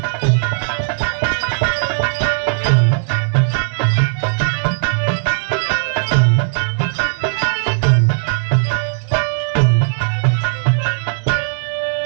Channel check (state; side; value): silent; left; 55 dB below the other